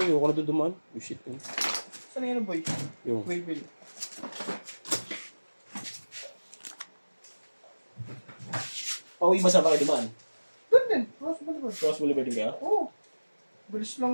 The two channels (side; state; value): both; inverted; correlation -1.00